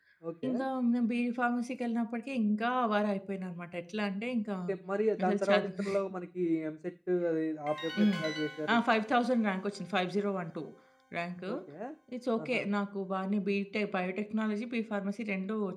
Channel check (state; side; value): identical; both; correlation 1.00